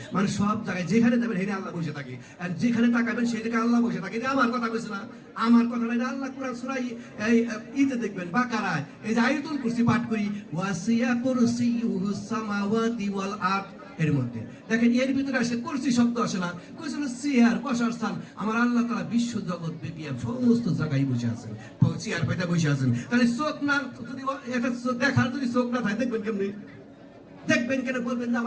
মানে সব জায়গায় যেখানে যাবেন সেখানে আল্লাহ বসে থাকে, আর যেখানে তাকাবেন সেই জায়গায় আল্লাহ বসে থাকে। এটা আমার কথা বলছে না, আমার কথা না, আল্লাহ কোরআন সূরা ইতে দেখবেন বাকারায়, এই যে আয়াতুল কুরসি পাঠ করি, ওয়াসিয়া কুরসিয়ুস সামাওয়াতি ওয়াল আরদ, এর মধ্যে দেখেন এর ভিতরে আসে কুরসি শব্দ আসে না, কুরসি হলো চেয়ার, বসার স্থান। আমার আল্লাহ তাআলা বিশ্ব জগৎ ব্যাপী সমস্ত জায়গায় বসে আছেন, চেয়ার পাইতে বসে আছেন। তাহলে চোখ না, যদি এটা দেখার যদি চোখ না থাকে দেখবেন কেমনি? দেখবেন কেন? বলবেন যে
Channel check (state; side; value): identical; both; correlation 1.00